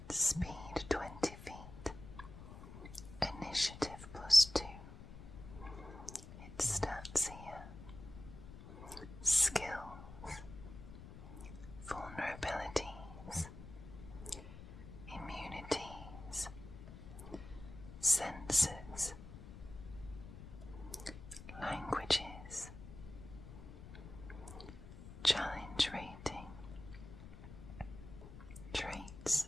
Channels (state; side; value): noise; left; rumble, 13 dB below the sound